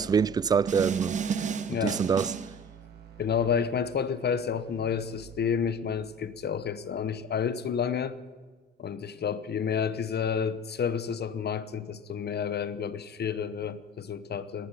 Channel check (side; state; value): both; normal; correlation 0.38